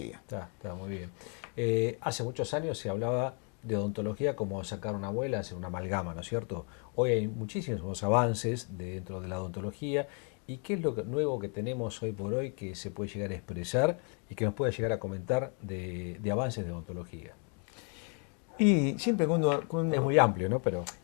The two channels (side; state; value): right; quieter; 39.6 dB